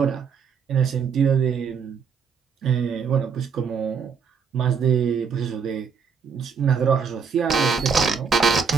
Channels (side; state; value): left; quieter; 6.1 dB